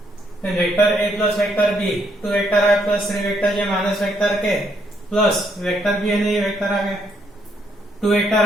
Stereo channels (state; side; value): normal; both; correlation 0.73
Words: then vector A plus vector B, 2 vector I plus 3 vector J minus vector K plus vector B है, ये वेक्टर आ गए 2 vector